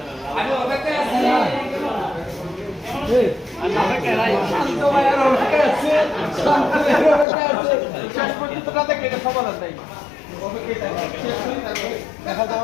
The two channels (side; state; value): right; drops out; at 7.2 s